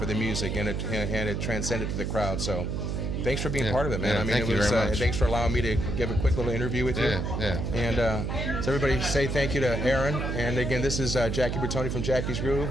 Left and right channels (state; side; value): noise; right; hum, 1 dB below the sound